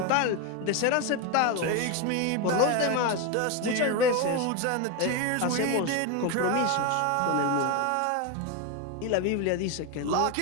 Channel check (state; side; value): different; both; correlation 0.02